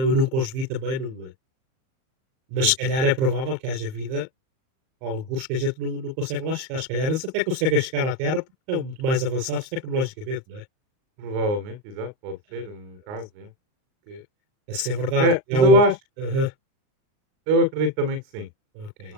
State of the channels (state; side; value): late; left; 38 ms